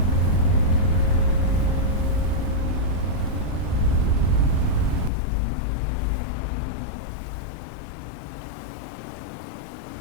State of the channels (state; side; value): drops out; right; at 5.1 s